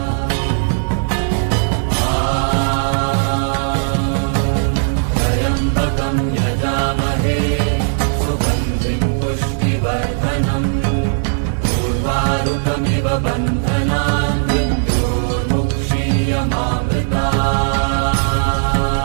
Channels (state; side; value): silent; left; digital silence